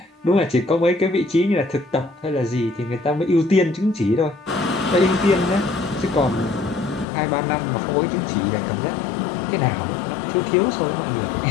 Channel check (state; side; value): drops out; right; at 7.1 s